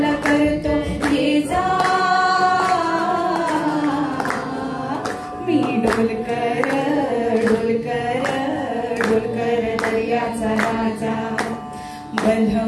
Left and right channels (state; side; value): identical; both; correlation 1.00